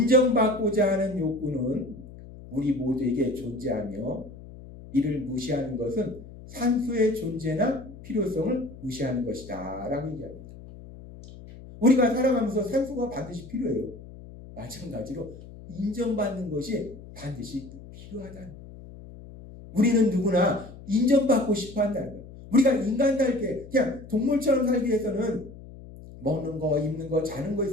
하는 욕구는 우리 모두에게 존재하며 이를 무시하는 것은 산수의 존재나 필요성을 무시하는 것이다 라고 얘기합니다. 우리가 살아가면서 산수가 반드시 필요해요. 마찬가지로 인정받는 것이 반드시 필요하다는 거예요. 우리는 누구나 인정받고 싶어 한다는 거예요. 우리가 인간답게 그냥 동물처럼 살기 위해서는 먹는 거, 입는 거, 자는 거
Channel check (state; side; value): noise; left; hum, 17 dB below the sound